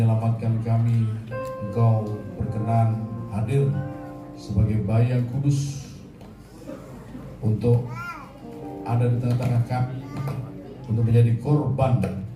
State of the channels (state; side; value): identical; both; correlation 1.00